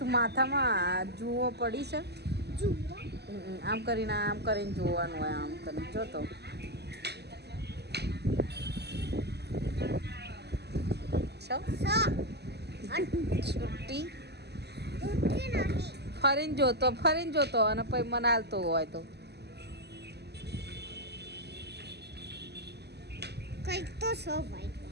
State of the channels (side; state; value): left; late; 0.49 ms